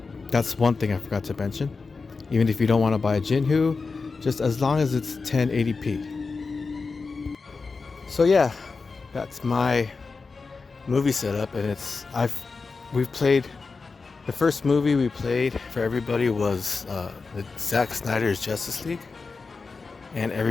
that's one thing I forgot to mention. Even if you don't want to buy a Jinhu, just as long as it's 1080p. So yeah, that's my movie setup, and we've played. The first movie we played for everybody was the Zack Snyder's Justice League, and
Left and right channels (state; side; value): quieter; right; 4.4 dB